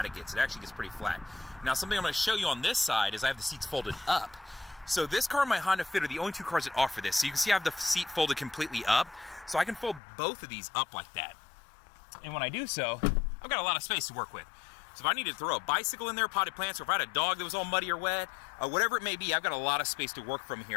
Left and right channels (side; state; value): right; drops out; at 10.0 s